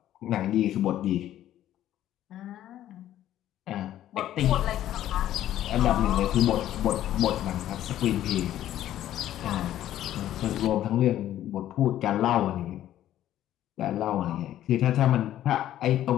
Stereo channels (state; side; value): quieter; right; 12.5 dB